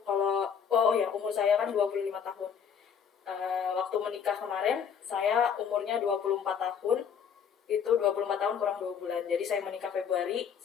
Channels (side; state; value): right; quieter; 7.4 dB